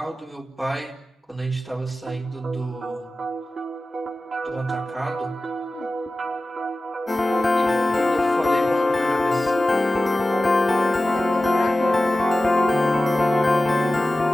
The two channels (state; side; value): normal; both; correlation 0.95